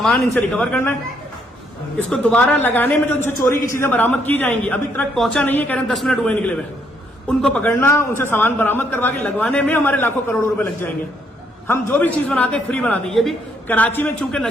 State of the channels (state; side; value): normal; both; correlation 0.72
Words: इनसे रिकवर करना है। इसको दोबारा लगाने में जो इनसे चोरी की चीजें बरामद की जाएंगी, अभी तक पहुंचा नहीं है, कह रहे हैं 10 मिनट हुए निकले हुए, उनको पकड़ना, उनसे सामान बरामद करवा के लगवाने में हमारे लाखों करोड़ों रुपए लग जाएंगे। हम जो भी चीज बनाते हैं फ्री बनाते हैं। ये भी कराची में चूंकि